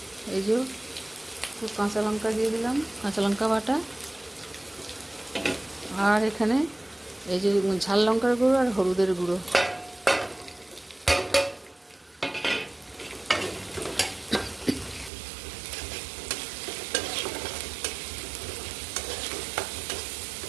এই যে একটু কাঁচা লঙ্কা দিয়ে দিলাম, কাঁচা লঙ্কা বাটা। আর এখানে এই যে ঝাল লঙ্কার গুঁড়ো আর হলুদের গুঁড়ো।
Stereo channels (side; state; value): left; drops out; at 15.1 s